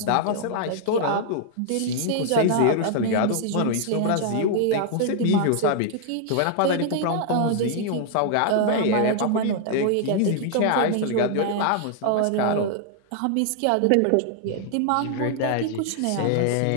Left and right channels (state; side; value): different; both; correlation 0.00